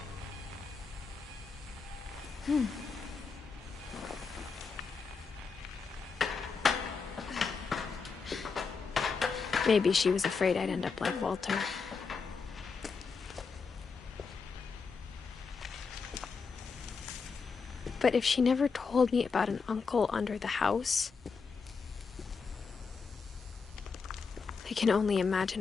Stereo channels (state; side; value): quieter; right; 5.1 dB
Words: Maybe she was afraid I'd end up like Walter. But if she never told me about an uncle under the house, I can only